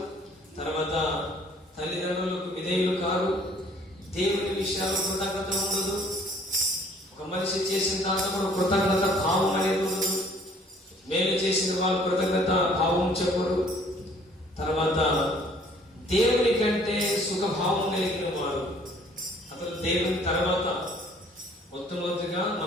తర్వాత తల్లిదండ్రులకు విధేయులు కారు, దేవుని విషయాల్లో కృతజ్ఞత ఉండదు, ఒక మనిషి చేసిన దాంట్లో కూడా కృతజ్ఞత భావం అనేది ఉండదు, మేలు చేసిన వాళ్ళు కృతజ్ఞత భావం చెప్పరు, తర్వాత దేవుని కంటే సుఖభావం కలిగిన వారు. అసలు దేవుని తర్వాత మొట్టమొదటిగా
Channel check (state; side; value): normal; both; correlation 0.57